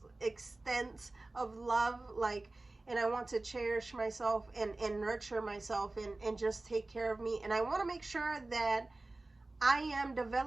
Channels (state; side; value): quieter; left; 3.0 dB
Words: extent of love. Like, and I want to cherish myself and nurture myself and just take care of me. And I want to make sure that I am